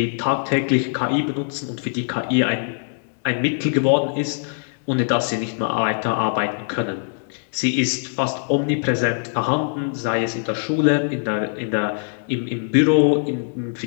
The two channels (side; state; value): right; silent; digital silence